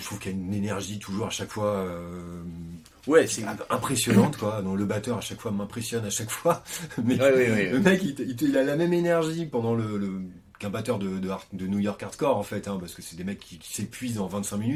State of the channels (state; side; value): identical; both; correlation 1.00